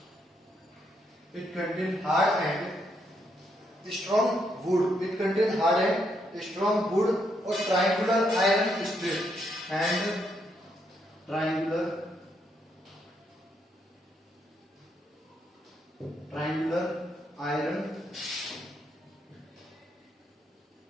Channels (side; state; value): both; normal; correlation 0.77